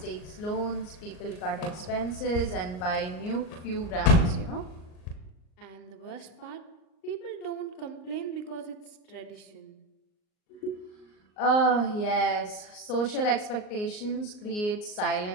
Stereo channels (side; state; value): right; late; 38 ms